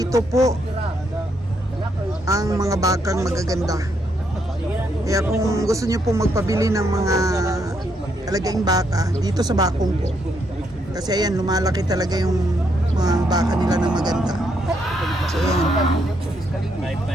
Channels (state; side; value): normal; both; correlation 0.75